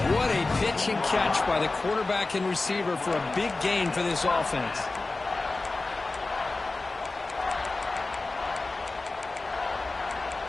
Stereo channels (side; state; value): right; quieter; 3.4 dB